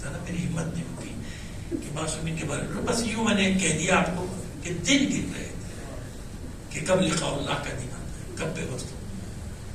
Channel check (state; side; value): identical; both; correlation 1.00